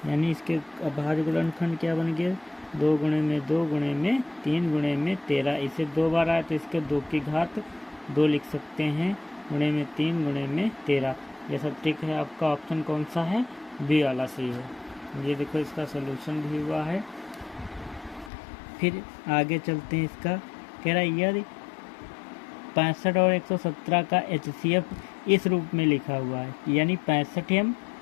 यानी इसके अभाज्य गुणनखंड क्या बन गया? 2 गुणे में 2 गुणे में 3 गुणे में 13। इसे 2 बार आया तो इसके 2 की घात 2 लिख सकते हैं, गुणे में 3 गुणे में 13। ये सब ठीक है। आपका ऑप्शन कौन सा है? बी वाला सही है। ये देखो इसका सलूशन भी हुआ है। फिर आगे चलते हैं। इसका कह रहा है यदि 65 और 117 का HCF इस रूप में लिखा हुआ है, यानी 65m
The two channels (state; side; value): drops out; right; at 18.3 s